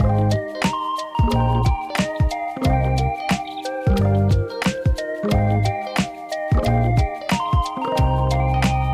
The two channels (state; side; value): identical; both; correlation 1.00